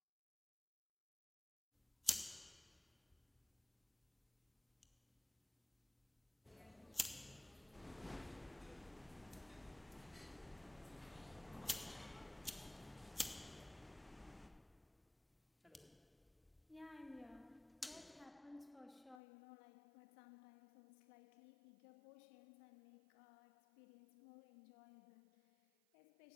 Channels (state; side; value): drops out; right; at 19.2 s